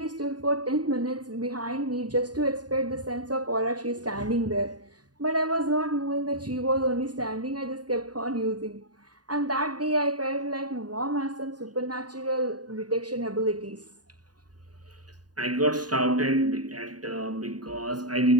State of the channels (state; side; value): late; left; 0.69 ms